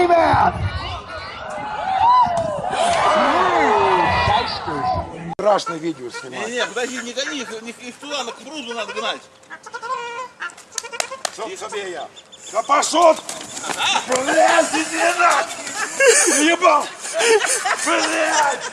man! Страшное видео снимать. Не, подожди, не гони их туда, на кругу надо гнать. Тебе я. Да пошел! Блядь, иди нахуй! Ебал! Блядь!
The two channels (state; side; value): identical; both; correlation 1.00